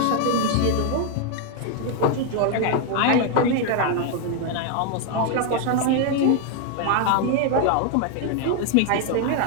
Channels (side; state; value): both; different; correlation 0.00